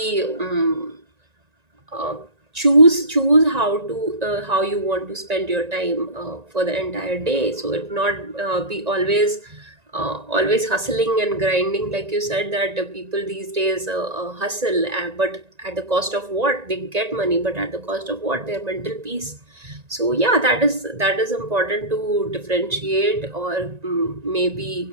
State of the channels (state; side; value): late; left; 1.9 ms